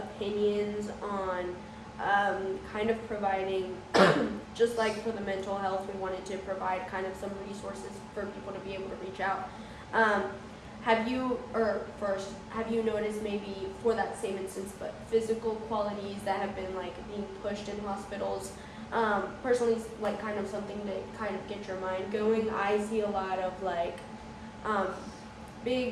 on kind of providing, just like for the mental health, we wanted to provide kind of some resources for people to be able to reach out. Have you noticed maybe for that same instance, but physical qualities that have been like being pushed in hospitals? Personally, like kind of something to kind of get your mind going. I see a lot of like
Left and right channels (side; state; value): both; identical; correlation 1.00